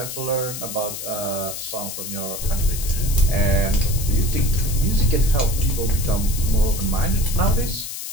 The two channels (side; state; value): left; noise; hiss, 7 dB below the sound